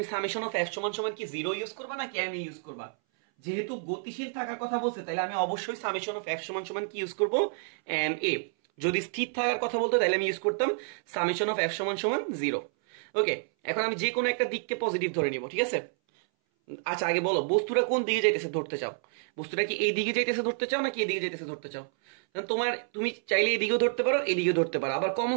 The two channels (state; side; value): silent; left; 58 dB below the other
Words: সামেশন অফ এফ সমান সমান কি 0 ইউজ করবা নাকি এম ইউজ করবা? যেহেতু গতিশীল থাকার কথা বলছে, তাহলে আমি অবশ্যই সামেশন অফ এফ সমান সমান কি ইউজ করবো? M A. যদি স্থির থাকার কথা বলতো, তাহলে আমি ইউজ করতাম সামেশন অফ এফ সমান সমান 0। ওকে, এখন আমি যে কোনো একটা দিককে পজিটিভ ধরে নিব, ঠিক আছে? আচ্ছা, আগে বলো বস্তুটা কোন দিকে যাইতেছে ধরতে চাও? বস্তুটা কি এই দিকে যাইতেছে ধরতে চাও নাকি এদিকে যাইতেছে ধরতে চাও? তুমি চাইলে এদিকেও ধরতে পারো, এদিকেও ধরতে পারো, আবার কমন